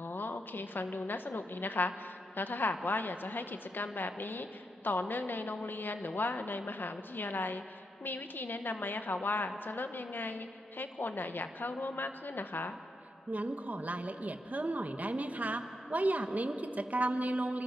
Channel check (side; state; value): both; normal; correlation 0.82